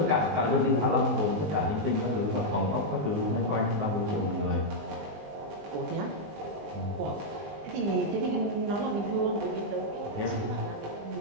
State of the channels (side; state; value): left; late; 20 ms